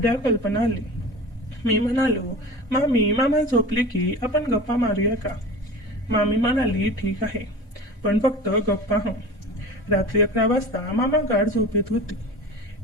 कल्पना आली. मी म्हणालो, मामी, मामा झोपले की आपण गप्पा मारूया का? मामी म्हणाली, ठीक आहे, पण फक्त गप्पा हो. रात्री 11 वाजता मामा गाढ झोपेत होती.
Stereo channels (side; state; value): both; normal; correlation 0.35